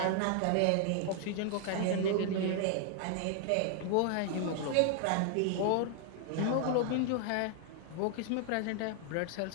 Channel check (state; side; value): different; both; correlation 0.00